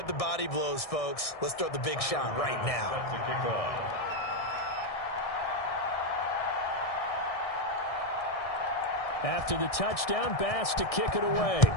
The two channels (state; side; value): late; right; 1.6 ms